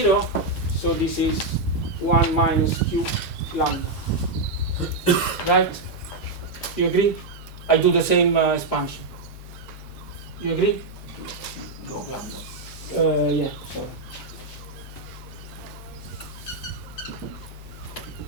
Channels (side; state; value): left; quieter; 3.2 dB